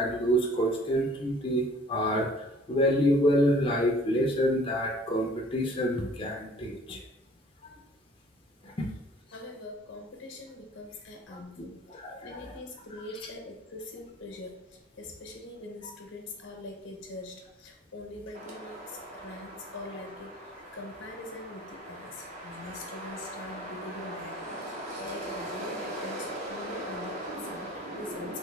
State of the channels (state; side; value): normal; both; correlation 0.52